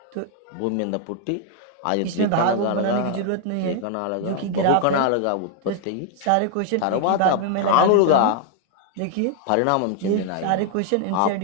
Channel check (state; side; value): different; both; correlation 0.00